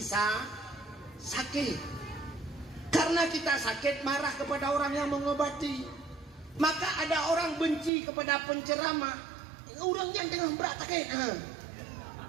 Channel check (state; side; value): drops out; left; at 7.9 s